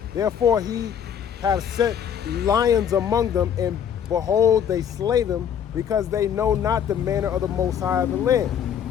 Therefore he hath sent lions among them, and behold, they slay them, because they know not the manner of the Most High of the land.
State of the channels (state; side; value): quieter; right; 8.5 dB